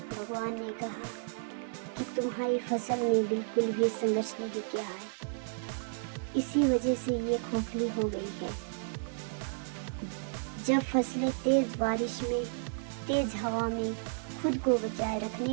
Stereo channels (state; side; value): silent; left; 56 dB below the other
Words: भगवान ने कहा कि तुम्हारी फसल ने बिल्कुल भी संघर्ष नहीं किया है, इसी वजह से ये खोखली हो गई है। जब फसलें तेज बारिश में, तेज हवा में खुद को बचाए